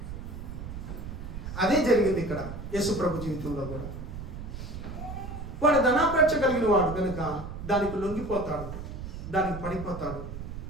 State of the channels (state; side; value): noise; right; rumble, 9 dB below the sound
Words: అదే జరిగింది ఇక్కడ యేసు ప్రభు జీవితంలో కూడా. వాడు ధనాపేక్ష కలిగిన వాడు కనుక దానికి లొంగిపోతాడు, దానికి పడిపోతాడు,